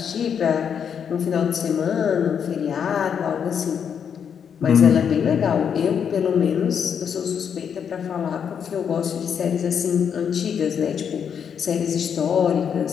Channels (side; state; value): right; quieter; 7.6 dB